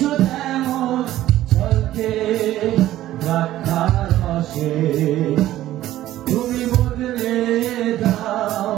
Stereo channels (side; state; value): left; quieter; 14.1 dB